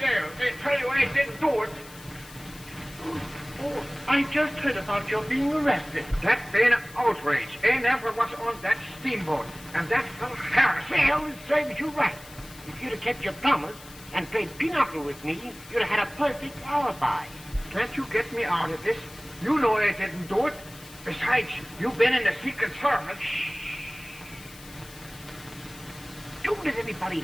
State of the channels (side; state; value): left; noise; hiss, 19 dB below the sound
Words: They tell you I didn't do it. Oh, I just heard about your being arrested. That been an outrage. I never was on that steamboat. And that fellow Harris. Well, it serves you right. If you'd have kept your promise and played pinochle with me, you'd have had a perfect alibi. Can't you get me out of this? You know I didn't do it. Besides, you've been in the Secret Service. Don't let anybody